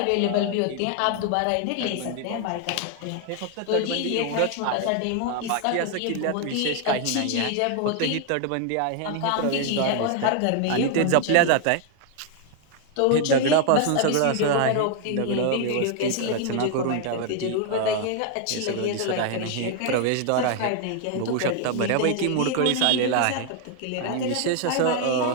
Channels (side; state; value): both; different; correlation 0.00